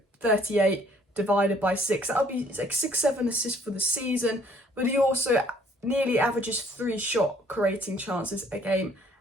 38 divided by 6. That would be like 6-7 assists for the season. But he also nearly averages 3 shot creating chances a game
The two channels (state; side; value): normal; both; correlation 0.60